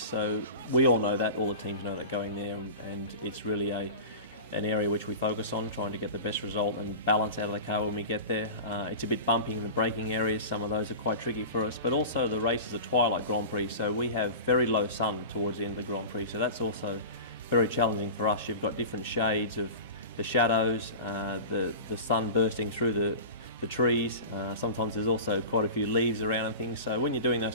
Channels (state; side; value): inverted; both; correlation -0.32